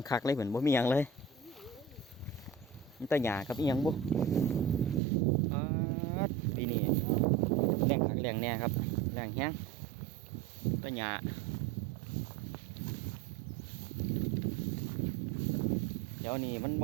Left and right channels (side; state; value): left; drops out; at 5.0 s